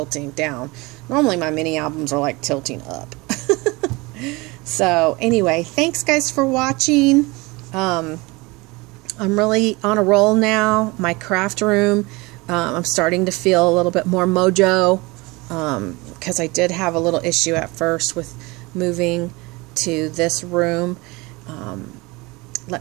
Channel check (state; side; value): quieter; left; 24.1 dB